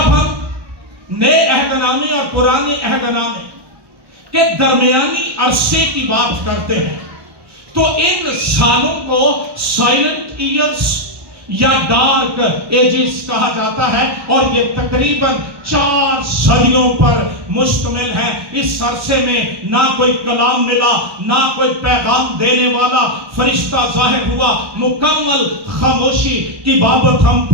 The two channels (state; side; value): late; left; 1.2 ms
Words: ہم نئے عہد نامے اور پرانے عہد نامے کے درمیانی عرصے کی بات کرتے ہیں تو ان سالوں کو سائلنٹ ایئرز یا ڈارک ایجز کہا جاتا ہے، اور یہ تقریباً 4 صدیوں پر مشتمل ہے۔ اس عرصے میں نہ کوئی کلام ملا، نہ کوئی پیغام دینے والا فرشتہ ظاہر ہوا، مکمل خاموشی کی بابت ہم